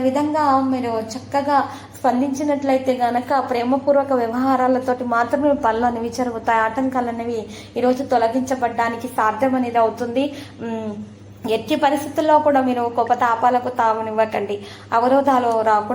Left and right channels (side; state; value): both; identical; correlation 1.00